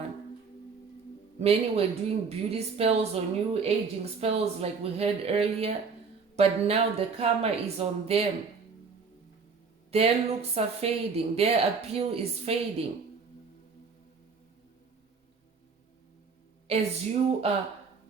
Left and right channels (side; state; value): left; quieter; 5.1 dB